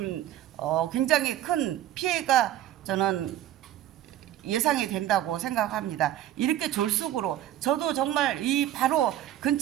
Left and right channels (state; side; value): quieter; left; 12.6 dB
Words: 굉장히 큰 피해가 저는 예상이 된다고 생각합니다. 이렇게 졸속으로 저도 정말 이 바로